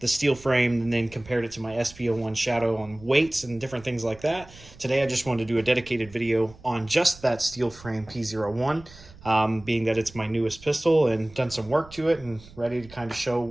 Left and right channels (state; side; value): noise; right; rumble, 21 dB below the sound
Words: steel frame, and then compared it to my SP01 Shadow on weights and different things like that. Today I just wanted to do a dedicated video on just that steel frame P01, being that it's my newest pistol, and done some work to it and ready to kind of show